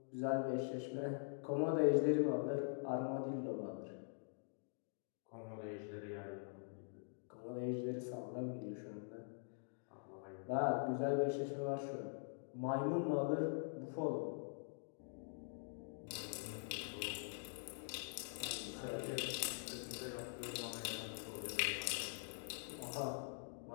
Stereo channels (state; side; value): silent; right; digital silence